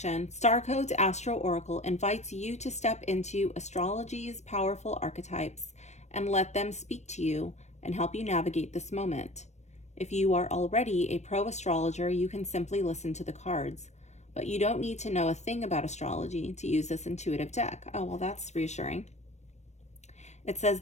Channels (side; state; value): right; late; 0.33 ms